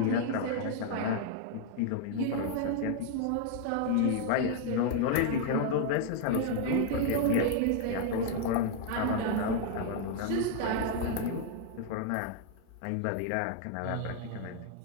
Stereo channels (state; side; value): different; both; correlation 0.00